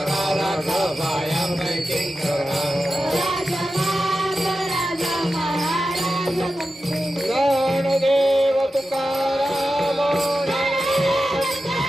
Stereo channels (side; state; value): both; normal; correlation 0.92